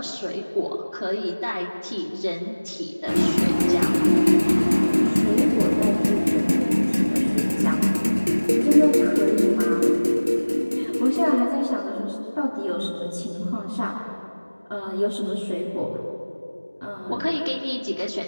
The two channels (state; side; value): inverted; both; correlation -1.00